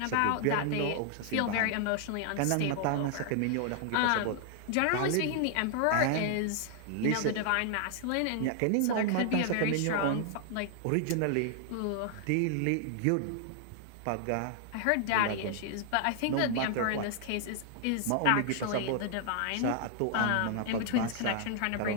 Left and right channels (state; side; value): different; both; correlation 0.00